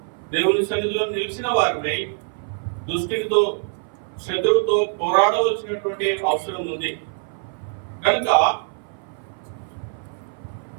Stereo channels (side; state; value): left; silent; 58 dB below the other